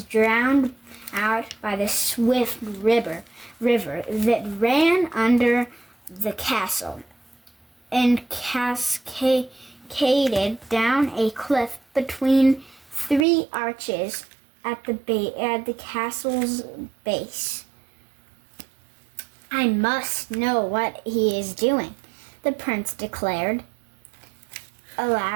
drowned out by the swift river that ran under the castle and cascaded down a cliff between 3 arches at the castle's base. "I must know what he is doing," the prince declared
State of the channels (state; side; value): drops out; left; at 13.2 s